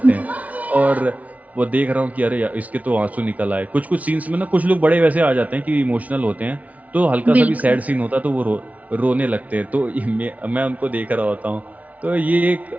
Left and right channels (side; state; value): left; late; 0.070 ms